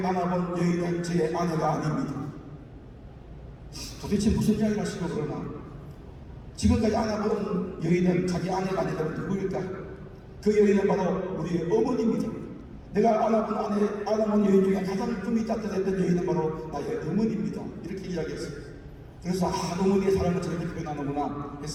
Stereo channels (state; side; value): identical; both; correlation 1.00